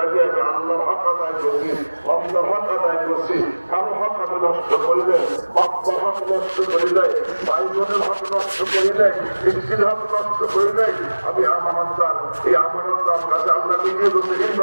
আমি আল্লাহর হক আদায় করছি, আল্লাহর হক আদায় করছি, কারো হক আমি নষ্ট করিলে, বাপ্পার হক নষ্ট করিলে, ভাই বোনের হক নষ্ট করিলে, স্ত্রীর হক নষ্ট করিলে, আমি আমানতদার। এই আমানতদার কাছে আল্লাহ নিজে বলছে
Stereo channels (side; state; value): both; inverted; correlation -1.00